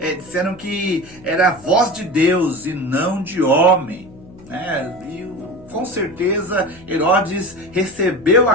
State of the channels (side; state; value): left; noise; hum, 21 dB below the sound